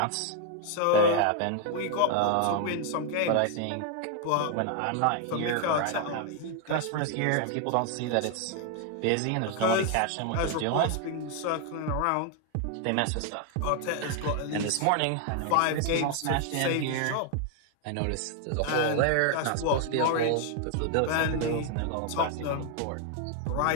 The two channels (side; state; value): both; different; correlation 0.00